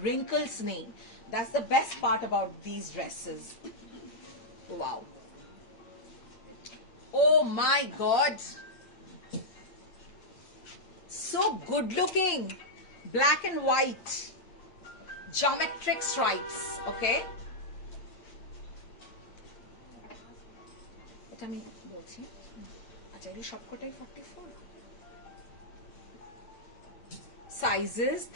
রিঙ্কলস নেই। That's the best part about this dresses. Wow, oh my god, so good looking, black and white geometric stripes, okay, এটা আমি বলছি। আচ্ছা, এই সবকটাই 44, সাইজেস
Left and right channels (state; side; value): late; right; 8.8 ms